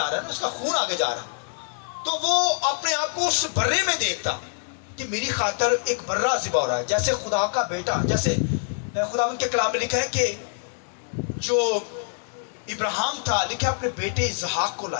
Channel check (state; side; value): silent; right; digital silence